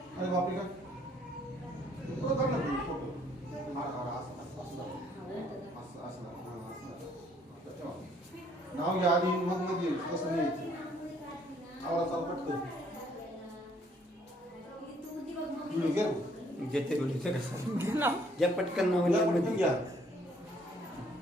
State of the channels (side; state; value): both; normal; correlation 0.64